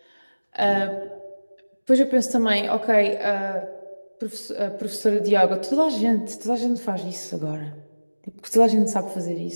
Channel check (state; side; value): inverted; both; correlation -1.00